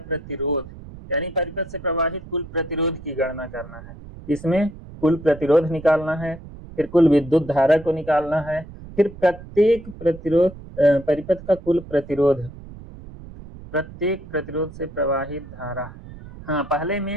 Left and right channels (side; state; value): right; noise; rumble, 16 dB below the sound